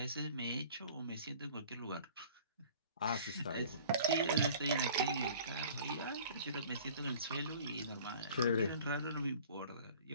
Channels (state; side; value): inverted; both; correlation -0.48